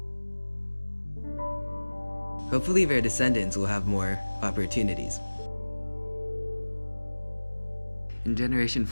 Hopefully their descendants will have more opportunities. In Generation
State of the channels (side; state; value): both; inverted; correlation -1.00